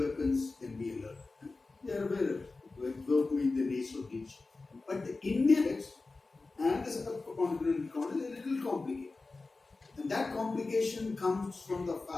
weapons can be alert. They are aware of it, work with the NATO region. But the Indians and the subcontinent economy is a little complicated. And that complication comes from the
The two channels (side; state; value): right; quieter; 3.6 dB